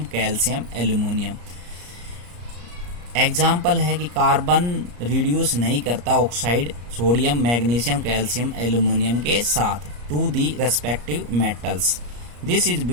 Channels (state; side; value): late; left; 34 ms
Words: calcium aluminium. Example है कि कार्बन रिड्यूस नहीं करता oxide sodium magnesium calcium aluminium के साथ to the respective metals. This is